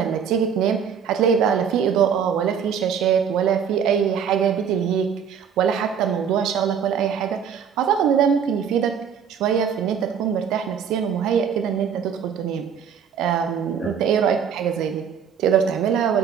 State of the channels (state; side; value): quieter; left; 7.5 dB